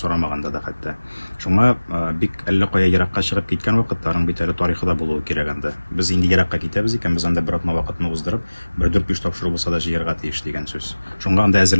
да хәтта. Шуңа бик әллә кая еракка чыгып киткән вакытларның бит әле тарихы да булуы кирәк анда. Без инде еракка китәбез икән, без анда бер атна вакытны уздырып, бер 4-5 тапшыру булса да җыярга тиеш дигән сүз. Шуңа анда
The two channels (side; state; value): both; inverted; correlation -1.00